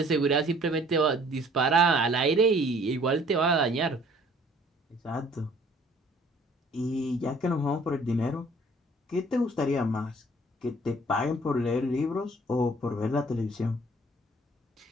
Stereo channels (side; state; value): both; normal; correlation 0.56